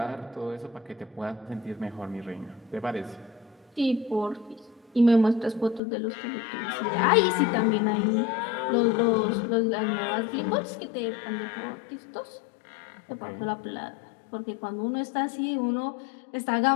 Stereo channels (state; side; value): drops out; right; at 5.8 s